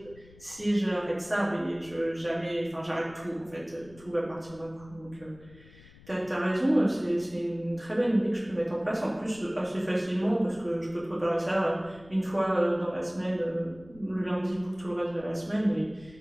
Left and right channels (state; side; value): noise; left; rumble, 22 dB below the sound